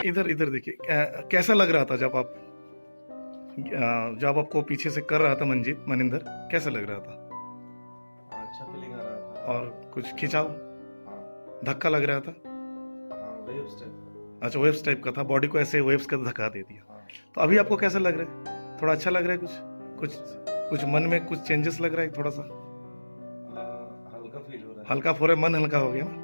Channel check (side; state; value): both; inverted; correlation -1.00